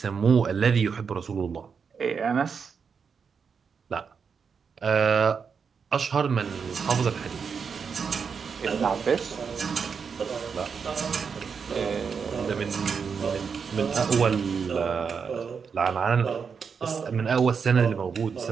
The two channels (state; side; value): quieter; left; 6.1 dB